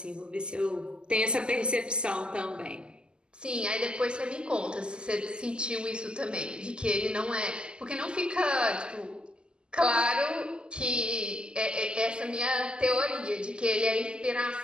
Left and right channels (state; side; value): late; left; 0.048 ms